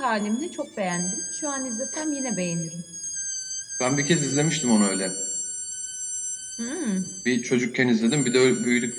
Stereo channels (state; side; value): identical; both; correlation 1.00